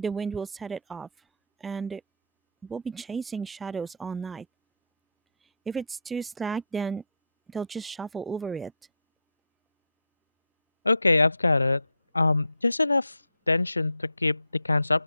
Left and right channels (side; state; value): both; inverted; correlation -0.70